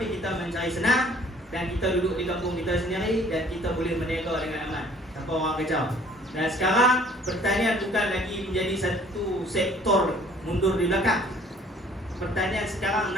kita mencari senang. Dan kita duduk di kampung kita sendiri, dan kita boleh berniaga dengan aman tanpa orang kacau. Dan sekarang pertanian bukan lagi menjadi satu sektor mundur di belakang. Pertanian sekarang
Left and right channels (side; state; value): both; normal; correlation 0.55